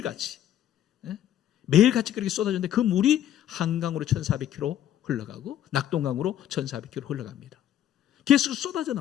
매일같이 그렇게 쏟아졌는데 그 물이 한강으로 1400km 흘러가고 낙동강으로 1400km 흘러갑니다. 계속 쏟아져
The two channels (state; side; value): quieter; right; 11.2 dB